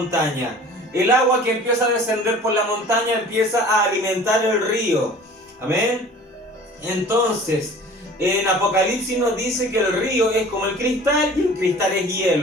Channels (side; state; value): both; normal; correlation 0.45